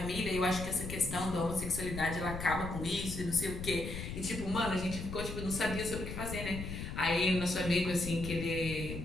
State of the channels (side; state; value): left; noise; rumble, 7 dB below the sound